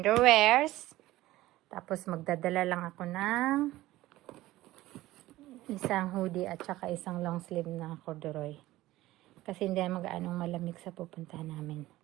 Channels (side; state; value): left; quieter; 16.7 dB